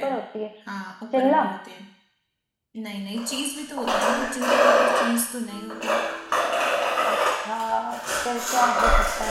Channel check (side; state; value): both; identical; correlation 1.00